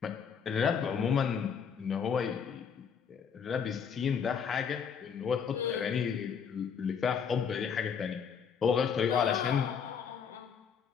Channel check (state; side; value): quieter; right; 6.9 dB